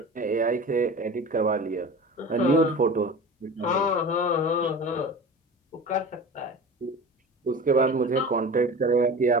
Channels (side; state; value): both; normal; correlation 0.35